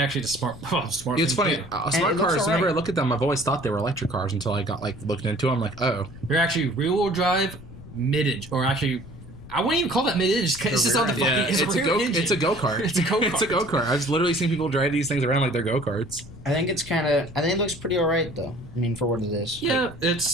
the smart. Smart. It's thing funny. too. Smart it looks cars. all Whenever I right. look at them, I've always thought they were electric cars until I got like looked into them. Like, oh, They're actually rear-wheel drive, mid-engine, or actually, I wouldn't even call that mid-engine. It's just on the fucking. yeah, It's a rear engine. It's a go kart. It's a go-kart. It's a go kart. I've literally seen people drive these things around like they're go karts. I think it looks pretty alright though. I mean, for what it is. Yeah,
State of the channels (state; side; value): noise; left; rumble, 17 dB below the sound